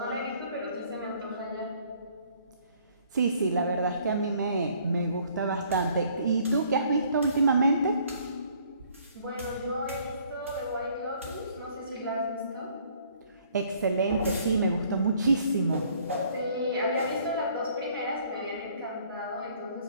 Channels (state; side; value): inverted; both; correlation -0.60